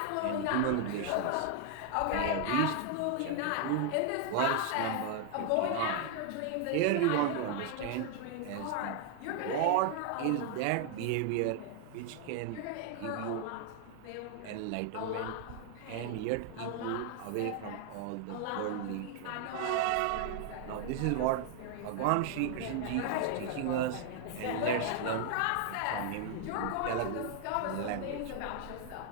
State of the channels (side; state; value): both; different; correlation 0.00